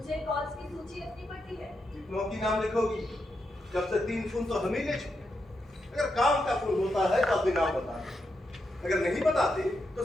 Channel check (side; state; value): both; normal; correlation 0.84